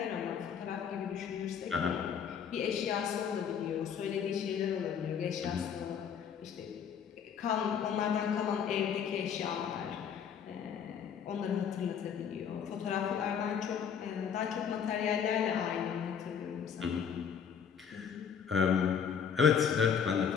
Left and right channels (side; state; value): right; quieter; 7.4 dB